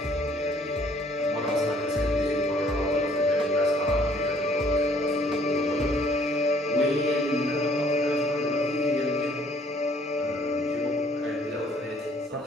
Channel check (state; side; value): normal; both; correlation 0.61